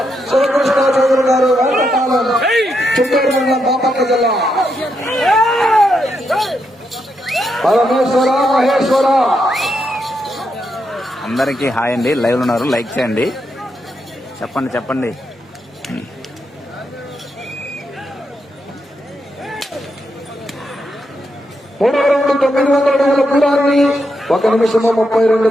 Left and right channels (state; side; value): normal; both; correlation 0.82